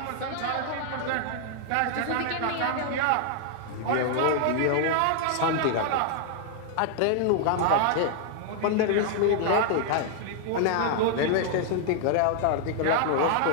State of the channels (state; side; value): different; both; correlation -0.01